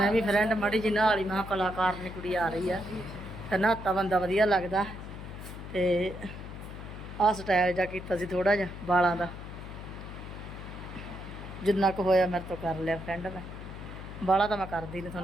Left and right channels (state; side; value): noise; left; hum, 11 dB below the sound